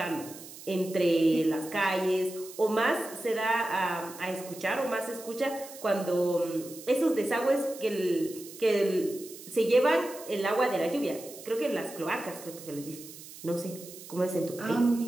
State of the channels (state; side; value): noise; right; hiss, 16 dB below the sound